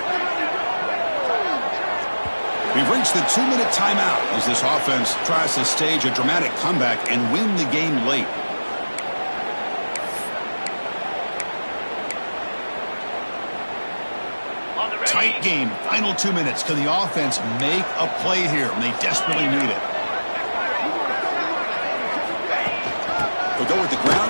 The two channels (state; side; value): inverted; both; correlation -1.00